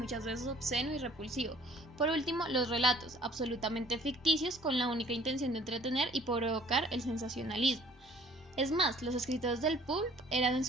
veces obsceno y repulsivo. Por último, los relatos, absolutamente ficticios con la única intención de entretener y provocar el sensacionalismo. Es más, los escritores del pulp eran en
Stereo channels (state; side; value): normal; both; correlation 0.55